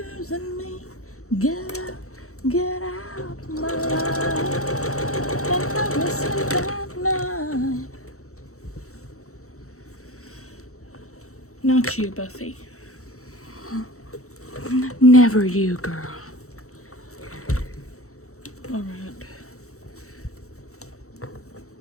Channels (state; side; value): late; right; 0.64 ms